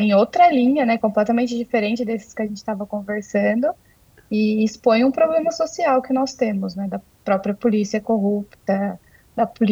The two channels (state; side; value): identical; both; correlation 1.00